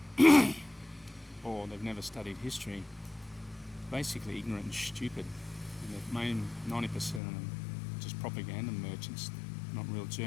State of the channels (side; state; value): right; drops out; at 7.2 s